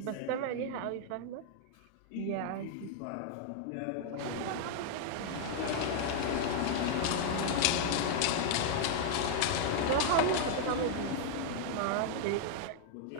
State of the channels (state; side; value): different; both; correlation -0.01